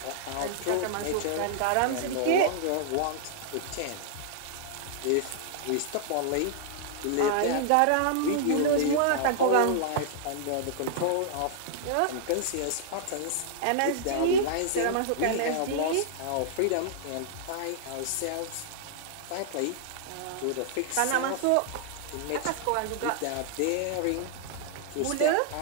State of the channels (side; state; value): both; different; correlation -0.01